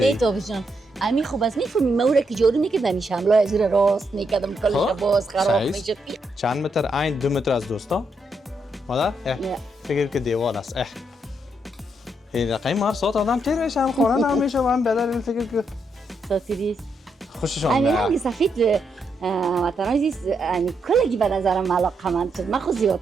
نه تو بجان امی خوب است میفهمی مورا که جوری میکردم شملا از زیر راست میکردم کلش باز خراب میشه چند متر عین 2 متر از دوستا مادر فکر که دیوار است این رقم مار صوت آدم تیر میشه هم خانه نمیشه و هم بدر فکر که ساتیریست خوششان امی رنگ سفید وطن عزیز امی کلگی به نظرم علاقمند شد من خود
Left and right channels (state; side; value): normal; both; correlation 0.79